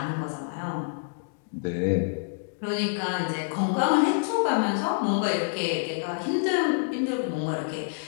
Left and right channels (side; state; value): right; silent; digital silence